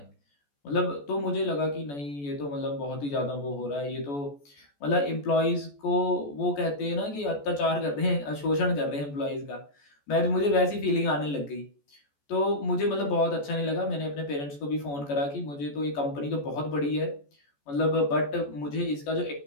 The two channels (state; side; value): late; right; 14 ms